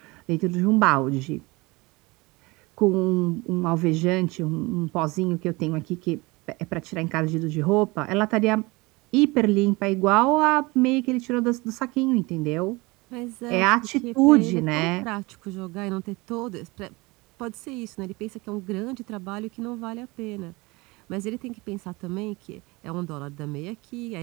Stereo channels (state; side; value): quieter; left; 23.8 dB